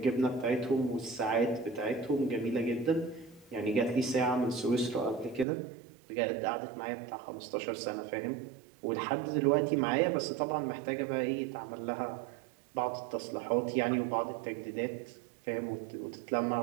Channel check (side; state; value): left; drops out; at 5.5 s